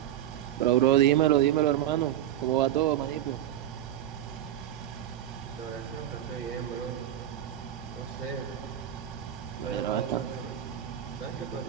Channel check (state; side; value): quieter; left; 11.7 dB